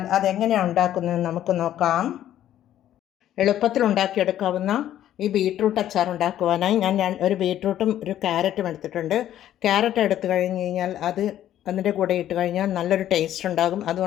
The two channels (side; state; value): right; quieter; 11.9 dB